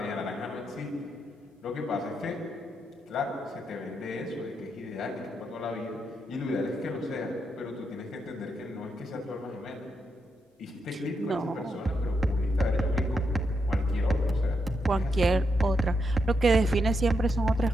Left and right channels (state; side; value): normal; both; correlation 0.82